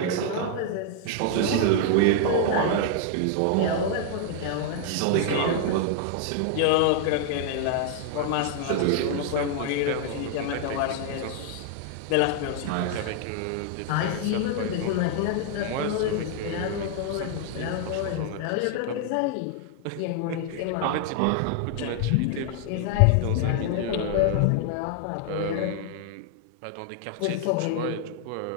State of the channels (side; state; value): both; different; correlation 0.00